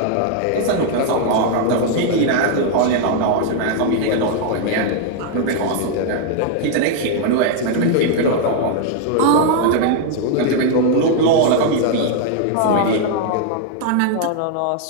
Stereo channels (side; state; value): both; different; correlation 0.00